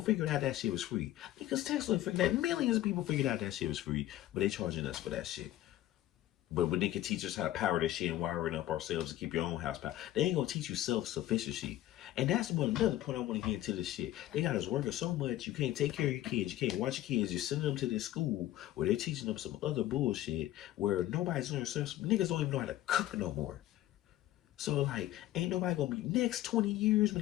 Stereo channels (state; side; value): quieter; right; 14.3 dB